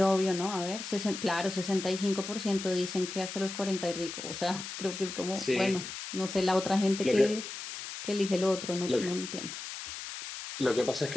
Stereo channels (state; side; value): noise; left; hiss, 8 dB below the sound